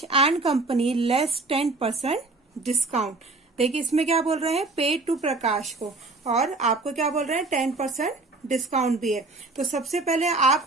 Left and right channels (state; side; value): quieter; left; 3.4 dB